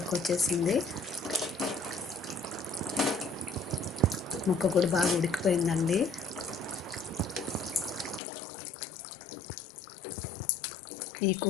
వచ్చేసింది. ముక్క కూడా బాగా ఉడికిపోయిందండి. ఈ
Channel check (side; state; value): right; drops out; at 8.2 s